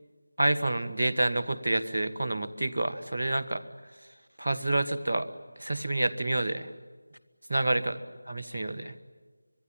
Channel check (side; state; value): both; inverted; correlation -0.97